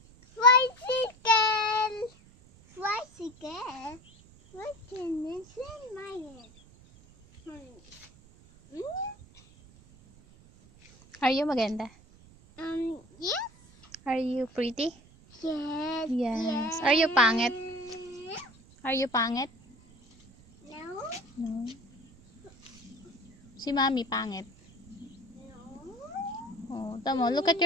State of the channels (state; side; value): noise; right; rumble, 25 dB below the sound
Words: Tricycle. Tricycle. What can this in my head? Are you maganda? Yes. Are you pretty? Yes. Yes. Are you pangit? Are you pangit? No. No. Si Mami pangit. No. Oh, tamo. Look at